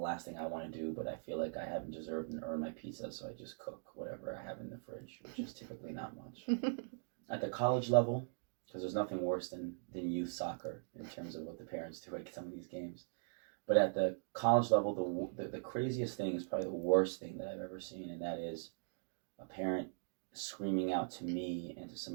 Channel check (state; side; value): silent; left; digital silence